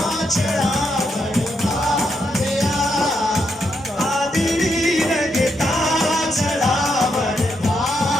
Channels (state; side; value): normal; both; correlation 0.80